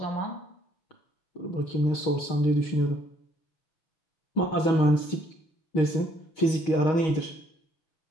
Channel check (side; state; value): right; late; 6.3 ms